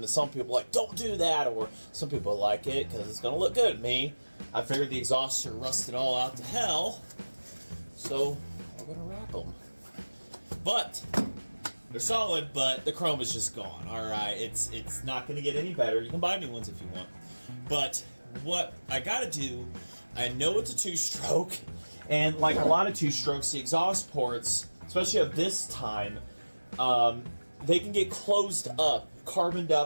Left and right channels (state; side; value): inverted; both; correlation -1.00